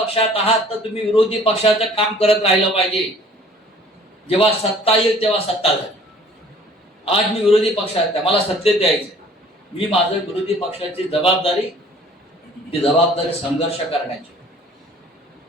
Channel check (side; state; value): both; normal; correlation 0.53